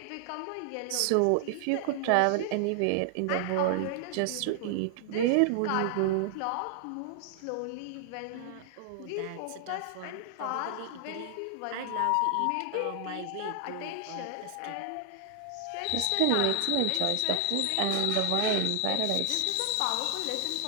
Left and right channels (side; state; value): both; different; correlation 0.00